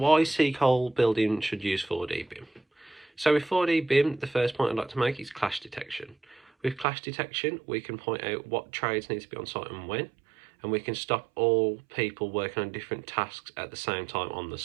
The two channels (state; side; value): drops out; left; at 6.9 s